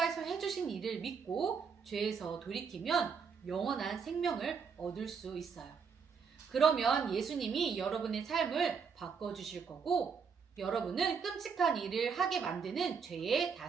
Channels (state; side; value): quieter; left; 6.0 dB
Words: 해주신 일을 믿고 죄에서 돌이키면 영원한 생명을 얻을 수 있어요. 그러면 예수님이 여러분의 삶을 바꿔주실 거고 여러분은 끔찍한 일을 하게 만드는 죄의